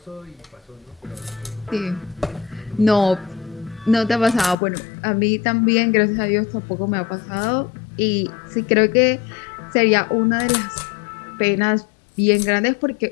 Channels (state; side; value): drops out; right; at 4.5 s